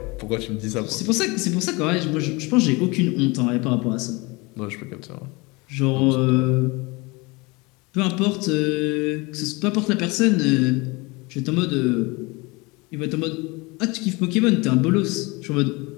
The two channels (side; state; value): right; quieter; 25.6 dB